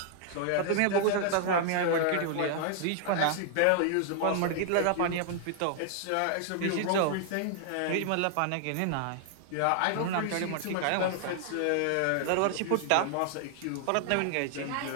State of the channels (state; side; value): different; both; correlation 0.00